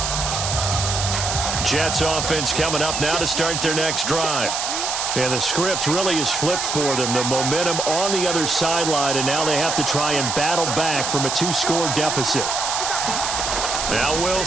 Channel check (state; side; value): noise; right; hiss, 2 dB below the sound